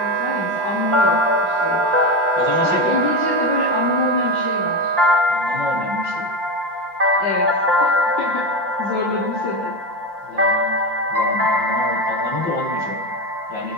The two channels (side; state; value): left; late; 5.7 ms